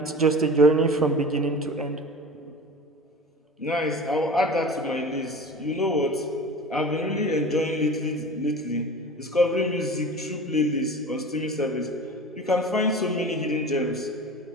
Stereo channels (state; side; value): normal; both; correlation 0.36